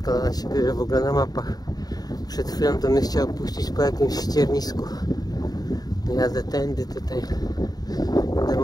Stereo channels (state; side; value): late; right; 0.19 ms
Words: ona się bierze w ogóle na mapach. Przed chwilą to mnie chciał puścić po jakimś ściernisku. Jadę tędy, tutaj będę